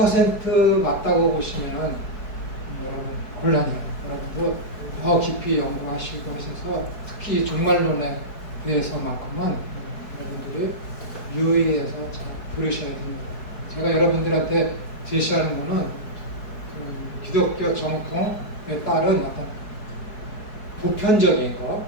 맞다고 보시면은 여러분 곤란해요. 여러분도 더 깊이 연구하시고 하셔서 특히 종말론에 대해서만큼은 여러분들이 유의해서 잘 들으셔야 됩니다. 제가 여러분들한테 제시하는 거는 기독교 정통에 따른 어떤 보편적인 거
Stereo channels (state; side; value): late; right; 4.6 ms